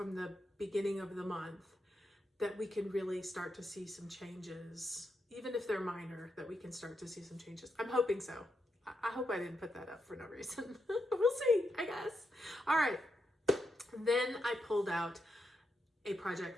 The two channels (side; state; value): both; normal; correlation 0.84